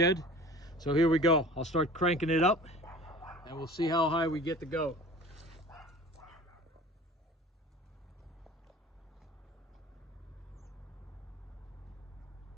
So here we go. I'll start cranking it up and we'll see how high we get to go.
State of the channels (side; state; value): both; normal; correlation 0.43